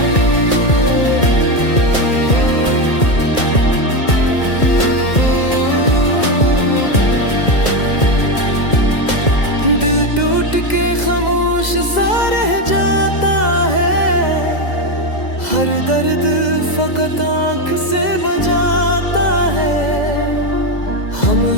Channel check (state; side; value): late; right; 2.0 ms